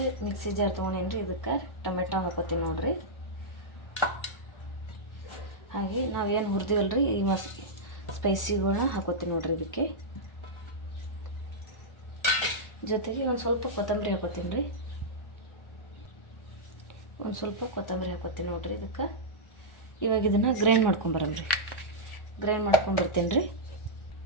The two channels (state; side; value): late; right; 1.4 ms